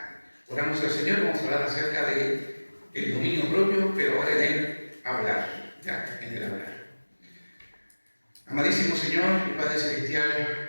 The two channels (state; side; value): inverted; both; correlation -1.00